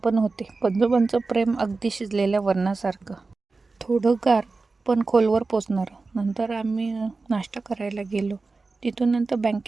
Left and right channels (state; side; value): quieter; left; 3.8 dB